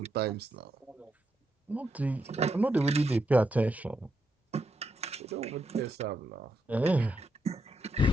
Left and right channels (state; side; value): normal; both; correlation 0.81